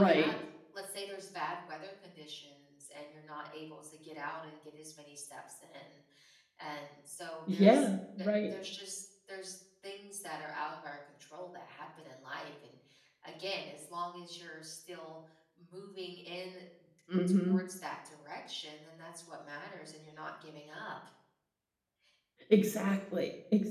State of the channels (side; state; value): both; identical; correlation 1.00